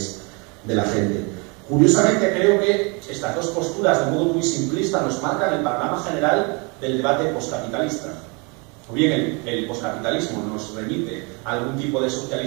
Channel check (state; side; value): quieter; left; 31.4 dB